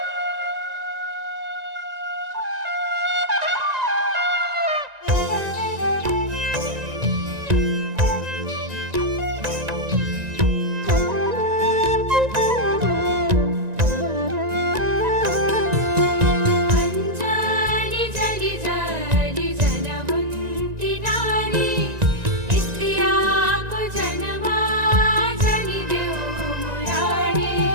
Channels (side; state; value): left; late; 1.9 ms